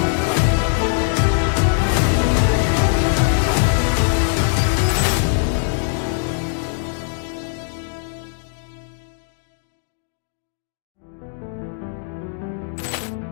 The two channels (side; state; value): right; silent; digital silence